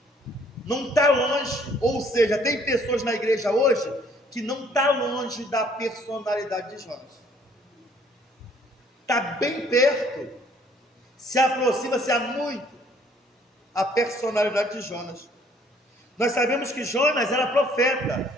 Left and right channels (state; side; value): normal; both; correlation 0.61